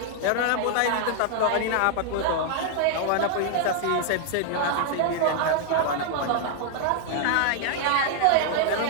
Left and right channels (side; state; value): both; different; correlation 0.00